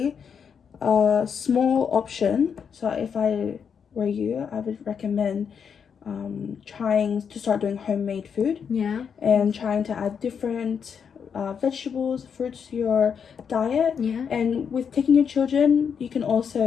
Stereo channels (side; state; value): right; quieter; 7.0 dB